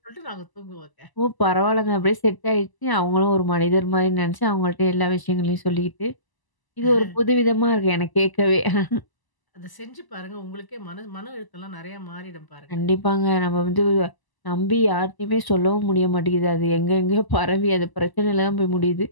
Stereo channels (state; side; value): late; right; 1.0 ms